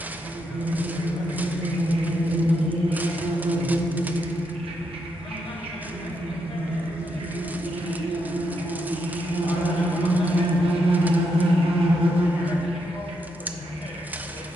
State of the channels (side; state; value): both; normal; correlation 0.80